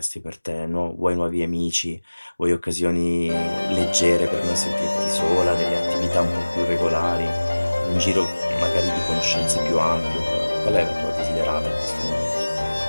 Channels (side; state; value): both; inverted; correlation -1.00